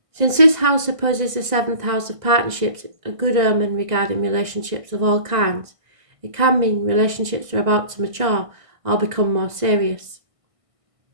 Since this house opposes the 7th house of partnerships, a good omen regarding relationships of all kinds. It can mean relationships are about to mature or become more serious.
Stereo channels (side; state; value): left; late; 1.5 ms